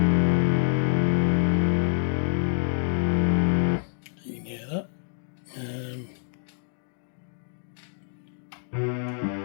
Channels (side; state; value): right; silent; digital silence